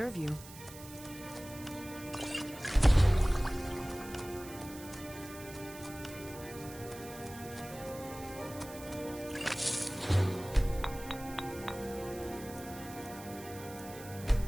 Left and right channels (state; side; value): noise; right; hiss, 16 dB below the sound